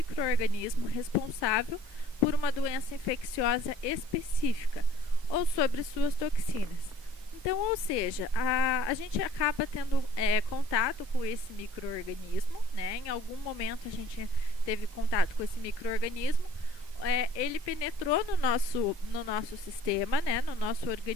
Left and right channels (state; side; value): normal; both; correlation 0.54